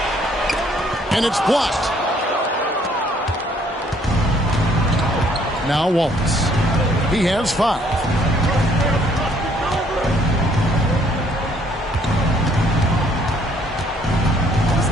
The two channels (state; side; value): normal; both; correlation 0.64